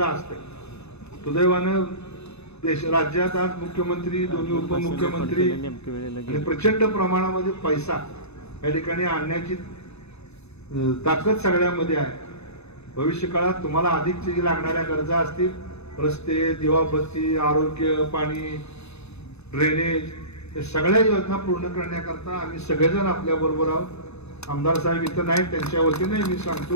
असतं. सुदैवानं राज्यात आज मुख्यमंत्री, दोन्ही उपमुख्यमंत्री आणि प्रचंड प्रमाणामध्ये पैसा या ठिकाणी आणण्याची ताकद सगळ्यामध्ये आहे. भविष्य काळात तुम्हाला अधिकची जी लागणाऱ्या गरजा असतील, रस्ते, दिवाबत्ती, आरोग्य, पाणी, ड्रेनेज, या सगळ्या योजना पूर्ण करण्याकरता आम्ही सगळेजण आपल्या बरोबर आहोत. आमदार साहेब इथं नाही, त्यांच्या वतीने मी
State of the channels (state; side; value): late; right; 0.80 ms